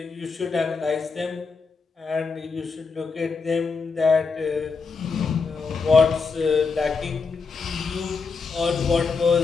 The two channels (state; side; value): quieter; right; 4.8 dB